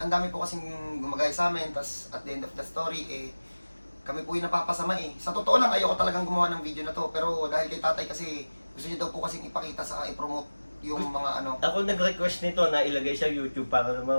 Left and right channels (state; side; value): inverted; both; correlation -1.00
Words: po kasing gumagaya sa amin, tas at the end of the story, kami po yung napapasama Sa totoo lang, ayoko talagang gumawa ng video na to, pero dahil kay tatay kasi, gusto niya daw po kasing ipakita sa i-promote yung mga Ako nag-request nito na ilagay sa YouTube para